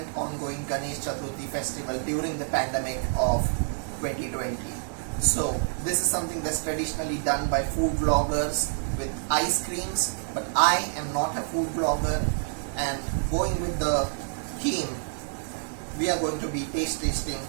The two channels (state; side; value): silent; left; 60 dB below the other